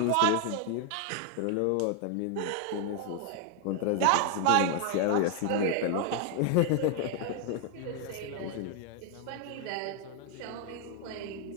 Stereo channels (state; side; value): different; both; correlation 0.00